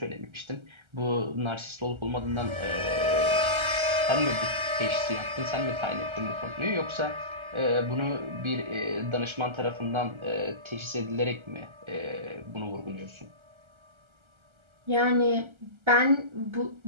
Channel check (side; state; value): left; late; 1.3 ms